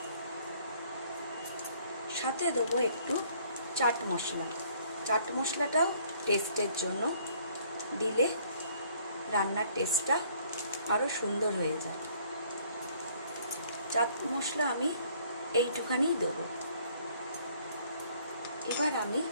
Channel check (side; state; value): both; inverted; correlation -0.61